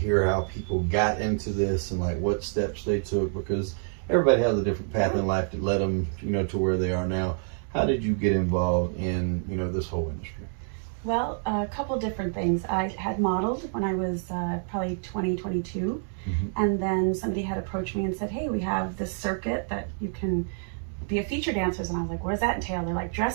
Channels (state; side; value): silent; left; 58 dB below the other